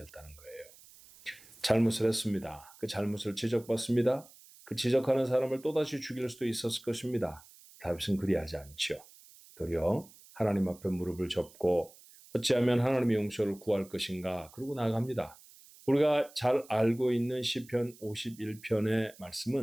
거예요. 잘못을 했습니다. 그 잘못을 지적받습니다. 그 지적하는 사람을 또다시 죽일 수도 있었을 것입니다. 다윗은 그리하지 않죠. 도리어 하나님 앞에 무릎을 접고 어찌하면 하나님의 용서를 구할 것인가 그러고 나아갑니다. 우리가 잘 알고 있는 시편 51편의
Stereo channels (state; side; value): noise; right; hiss, 23 dB below the sound